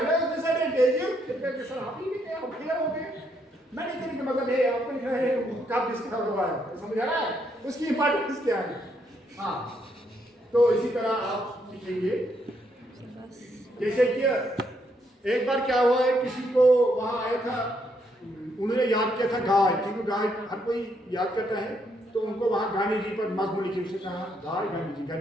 है, डिसएडवांटेजेस फिर सर आप ही लिखे, आप क्लियर हो गए। मैंने कहने का मतलब है आपको लिखना है कब डिस्कवर हुआ है, समझ आ रहा है, उसकी इंपॉर्टेंस क्या है। हाँ, तो इसी तरह आप लिखेंगे। जैसे कि एक बार क्या हुआ है, किसी को वहाँ आया था, उन्होंने याद किया था गाय, क्योंकि गाय हर कोई याद करता है, तो उनको वहाँ गांधी जी पर मजमू लिखे, उसने कहा गाय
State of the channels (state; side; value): normal; both; correlation 0.75